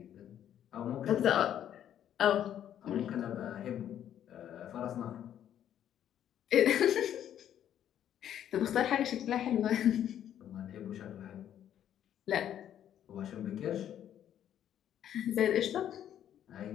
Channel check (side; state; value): right; quieter; 10.4 dB